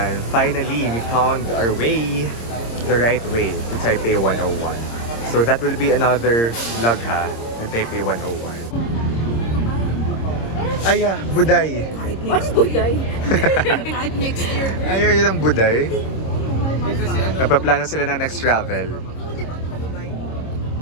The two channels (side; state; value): right; late; 26 ms